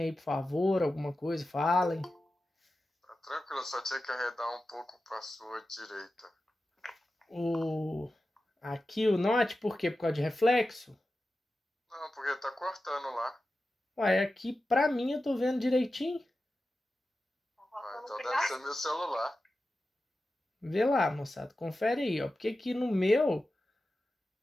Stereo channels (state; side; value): normal; both; correlation 0.93